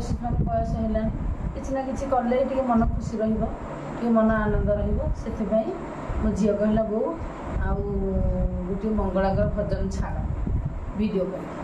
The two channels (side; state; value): both; identical; correlation 1.00